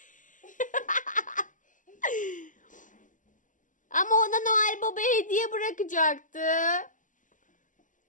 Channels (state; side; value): late; right; 0.37 ms